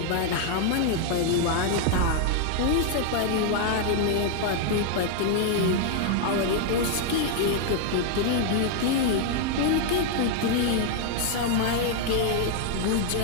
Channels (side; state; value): both; different; correlation 0.00